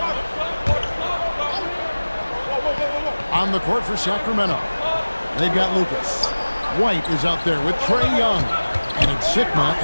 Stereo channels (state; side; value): inverted; both; correlation -1.00